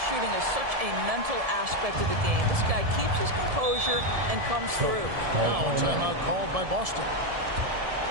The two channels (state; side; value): late; left; 1.7 ms